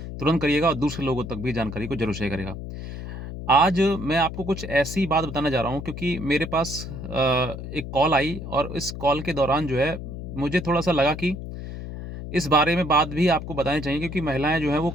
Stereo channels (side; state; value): left; noise; hum, 9 dB below the sound